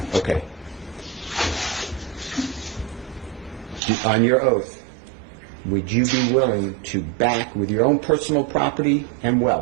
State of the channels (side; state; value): left; drops out; at 3.8 s